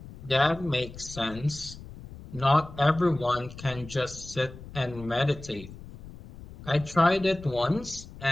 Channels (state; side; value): noise; left; rumble, 16 dB below the sound